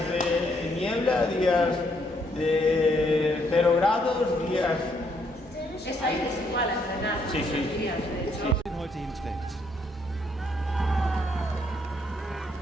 de niebla, días de 0 grados, días... Es aí desigual a entrenar. Sí, sí. Días, de hecho. Heute hinträgt.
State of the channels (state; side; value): normal; both; correlation 0.72